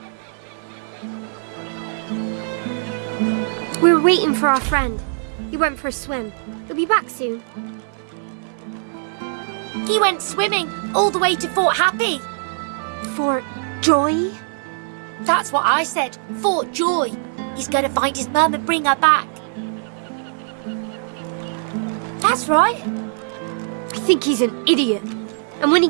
We're waiting for our friend. He went for a swim. He'll be back soon. He went swimming all the way to Fort Happy. For Joy? That's what I said. Fort Joy. He's going to find his mum and bring her back. That's right. I think he's an idiot. And when he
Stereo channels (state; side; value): silent; left; digital silence